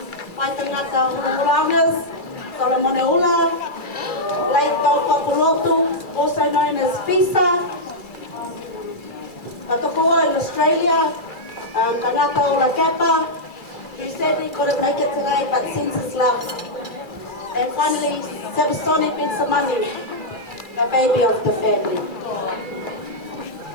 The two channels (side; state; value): right; late; 2.3 ms